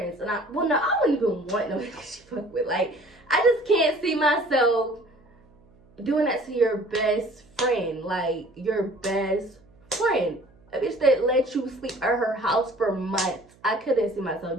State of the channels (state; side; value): noise; right; hum, 29 dB below the sound